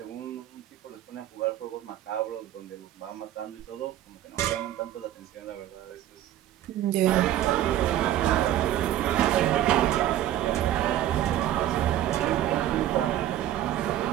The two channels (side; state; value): left; quieter; 12.5 dB